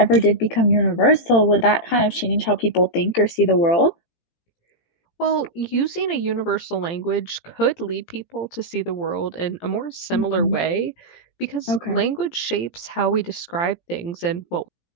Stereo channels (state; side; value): late; right; 17 ms